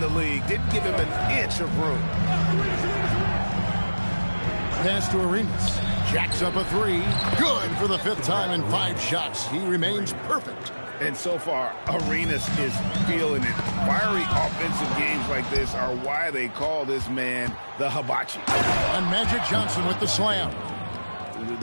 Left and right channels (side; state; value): both; inverted; correlation -1.00